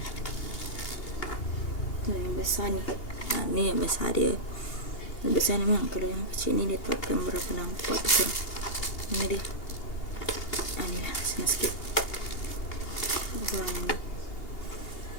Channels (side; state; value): right; late; 2.8 ms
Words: Tu yang besar ni. Ni yang besar dia. Yang besar ni memang. Kalau yang kecil ni dia takkan berapa nampak tu korang. Ni dia. Ni lah. Senang sikit. Warna ni.